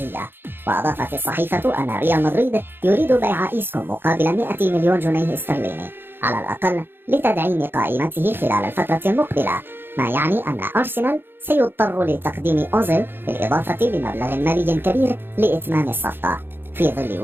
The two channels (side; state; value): left; late; 0.10 ms